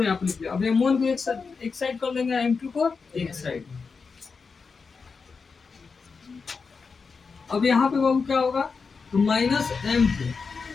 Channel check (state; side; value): quieter; right; 5.0 dB